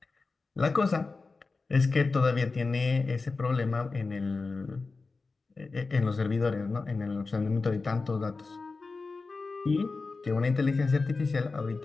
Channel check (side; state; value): right; quieter; 4.0 dB